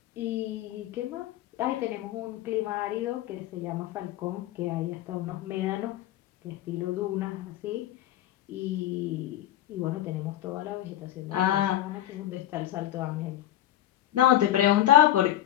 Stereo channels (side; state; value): right; quieter; 12.8 dB